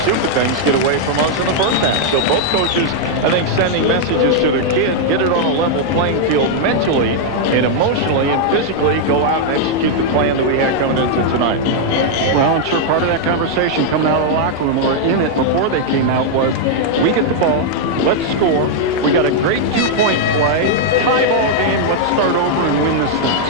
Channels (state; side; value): normal; both; correlation -0.01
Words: stupid things get away from us in the first half. So both coaches, I think, sending messages to their kid, get it on a level playing field mentally and emotionally and physically, go out and execute the plan that we had coming into tonight. Well, I'm sure part of that conversation coming out of the locker room or in it before they came out was, we get the ball, let's score. We got a great 2-point play, tie ball game, let's start over and win this thing.